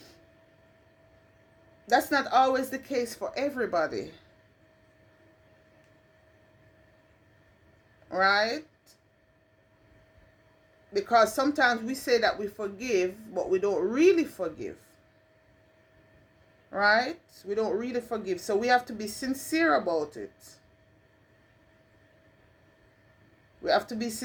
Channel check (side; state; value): both; identical; correlation 1.00